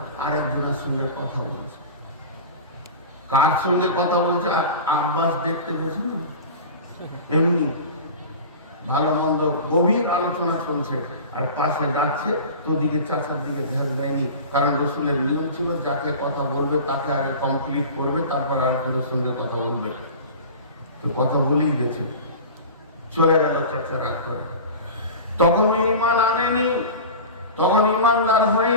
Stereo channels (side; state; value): both; inverted; correlation -0.34